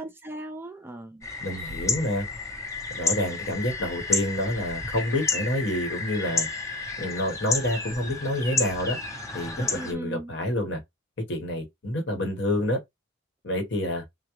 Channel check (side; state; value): both; normal; correlation 0.33